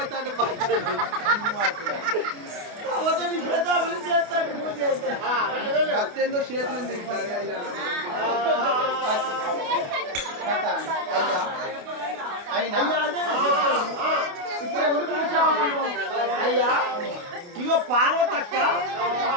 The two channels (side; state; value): left; late; 28 ms